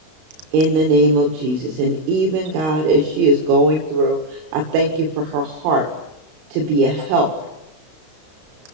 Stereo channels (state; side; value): late; left; 32 ms